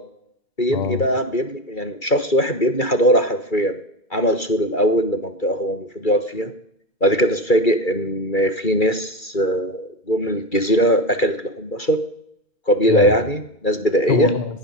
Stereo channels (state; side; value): late; right; 2.3 ms